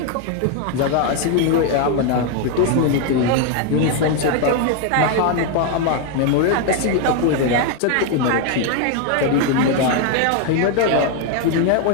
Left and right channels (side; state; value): both; different; correlation 0.01